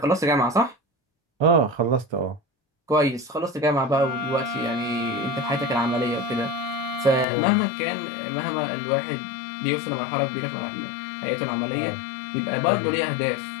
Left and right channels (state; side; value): drops out; right; at 7.2 s